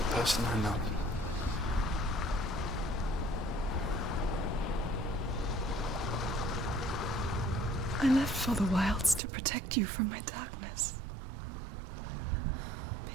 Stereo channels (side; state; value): left; drops out; at 9.2 s